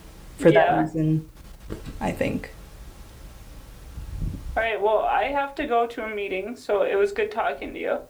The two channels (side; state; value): both; identical; correlation 1.00